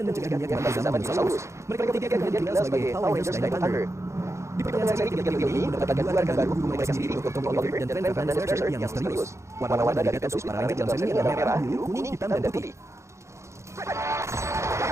mencegah dunia kembali ke zaman dinosaurus. Mereka bertiga kemudian dikenal sebagai Power Rangers Dino Thunder. Di pertengahan seri ketiga trio ini mendapatkan 2 rekan baru, guru mereka sendiri, Dr. Tommy Oliver dan Frank Fernandez Mercer yang misterius. Warna-warna dari Battle Suit para Ranger dalam seri ini adalah merah, biru, kuning, hitam, dan putih.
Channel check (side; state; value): left; late; 0.14 ms